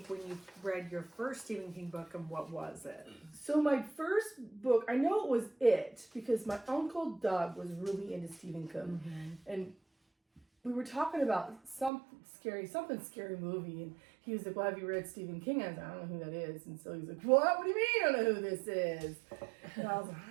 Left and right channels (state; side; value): drops out; left; at 11.9 s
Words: when you read your first Stephen King book, and what was it? So my first book, I know it was It, because my Uncle Doug was really into Stephen King. Mm-hmm. And we were talking about something scary movie, and he was like, well, have you read Stephen King? I was like, I don't know who that is. And so he's like, what? What do you mean you don't know who this is? And I was like,